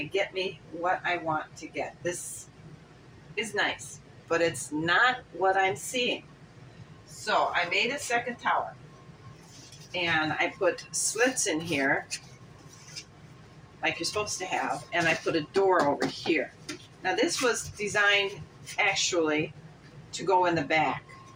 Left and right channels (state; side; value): identical; both; correlation 1.00